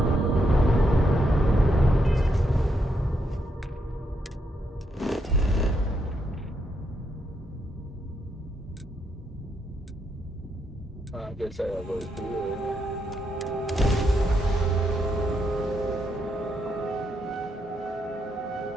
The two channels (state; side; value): normal; both; correlation 0.79